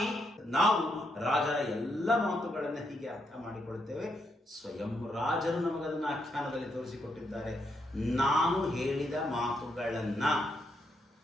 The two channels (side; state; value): both; normal; correlation 0.79